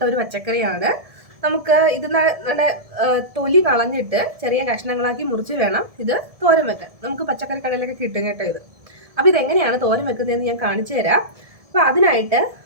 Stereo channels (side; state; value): left; late; 1.7 ms